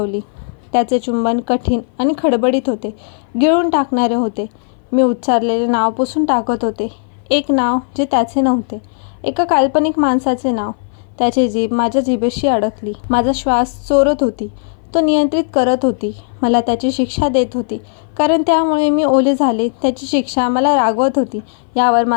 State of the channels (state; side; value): silent; right; 58 dB below the other